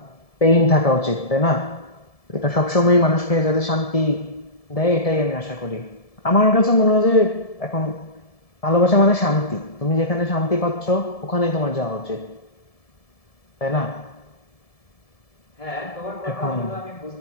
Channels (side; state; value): right; late; 1.7 ms